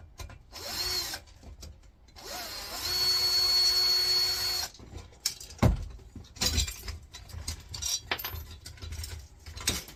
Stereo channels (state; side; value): identical; both; correlation 1.00